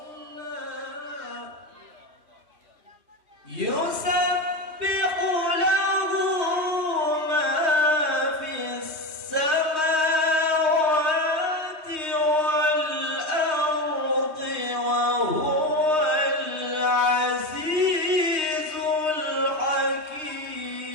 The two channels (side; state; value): left; late; 3.0 ms